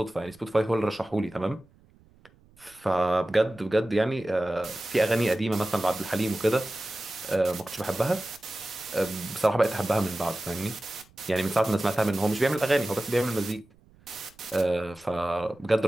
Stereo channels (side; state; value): right; noise; rumble, 29 dB below the sound